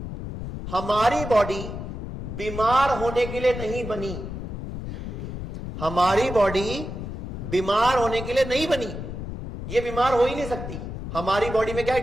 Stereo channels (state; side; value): noise; left; rumble, 7 dB below the sound